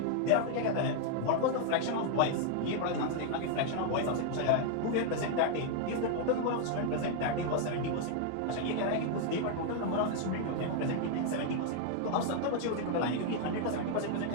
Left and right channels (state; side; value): different; both; correlation 0.00